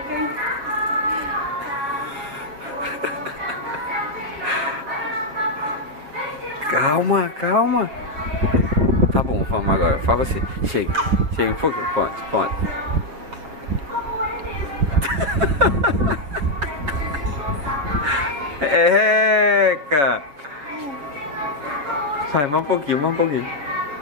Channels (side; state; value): left; late; 7.7 ms